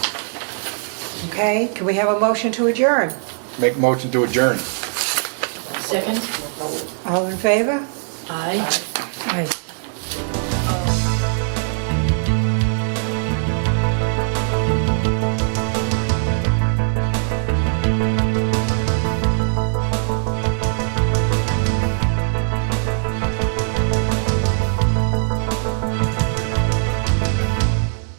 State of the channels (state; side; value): silent; left; digital silence